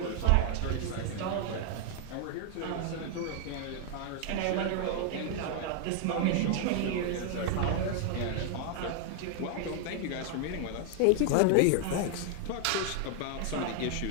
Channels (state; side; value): different; both; correlation 0.00